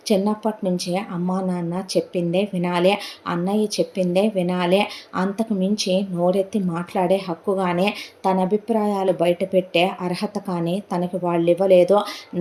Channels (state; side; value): identical; both; correlation 1.00